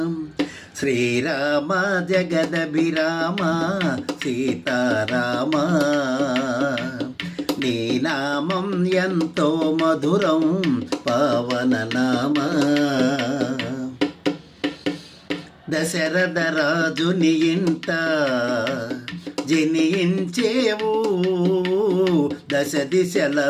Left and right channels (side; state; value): both; identical; correlation 1.00